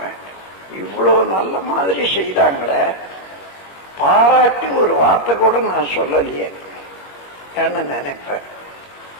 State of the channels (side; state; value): right; late; 21 ms